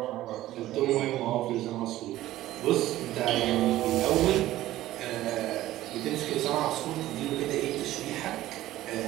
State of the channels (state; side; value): quieter; left; 15.0 dB